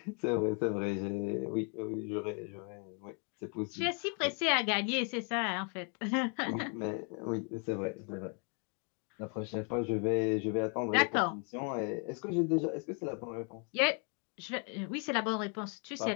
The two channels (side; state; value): right; quieter; 38.8 dB